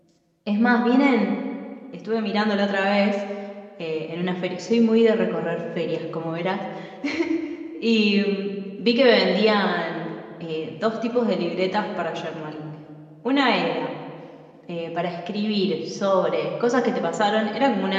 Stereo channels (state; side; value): identical; both; correlation 1.00